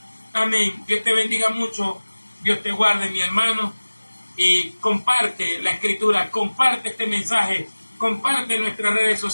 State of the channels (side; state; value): both; inverted; correlation -1.00